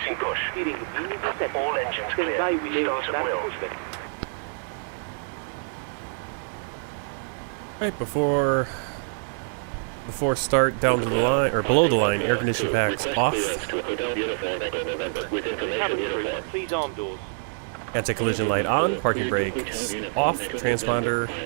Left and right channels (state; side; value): silent; left; digital silence